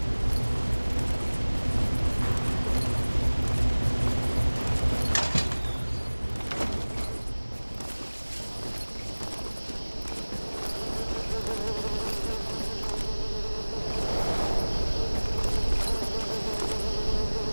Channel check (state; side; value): inverted; both; correlation -1.00